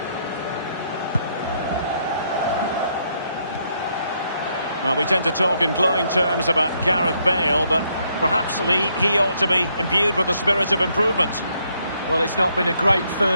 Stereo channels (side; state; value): both; inverted; correlation -0.74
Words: Well, we tend to talk in glowing terms about Gareth Bale, but perhaps, Lee, he ought to be imbued with the spirit of improvement. Well, it's not been a great